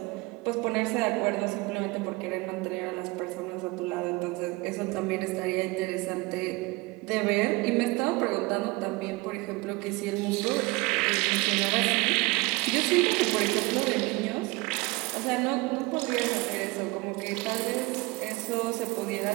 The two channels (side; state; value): left; quieter; 23.3 dB